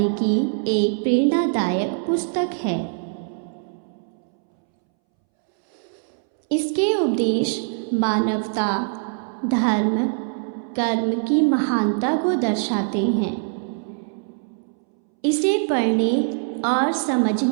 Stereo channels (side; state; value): left; silent; 64 dB below the other